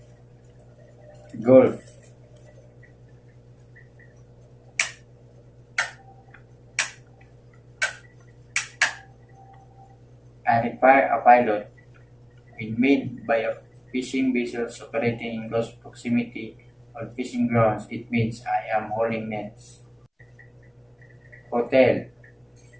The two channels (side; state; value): both; identical; correlation 1.00